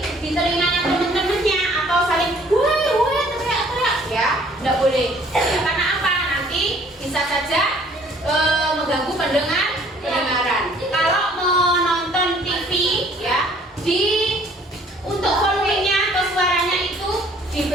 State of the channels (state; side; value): normal; both; correlation 0.58